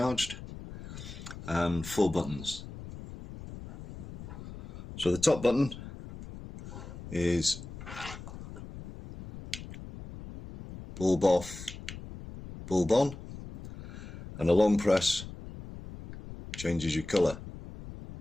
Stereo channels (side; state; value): left; noise; rumble, 12 dB below the sound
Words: and 4 buttons. So the top button is bulb off, bulb on, and a long press changes your colour.